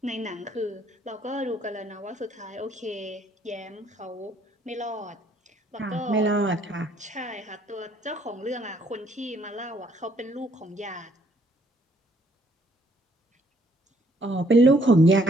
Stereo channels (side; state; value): both; normal; correlation 0.66